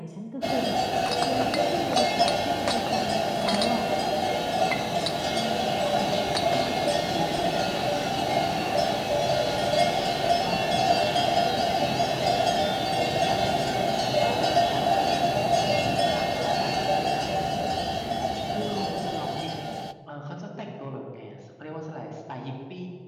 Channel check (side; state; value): both; identical; correlation 1.00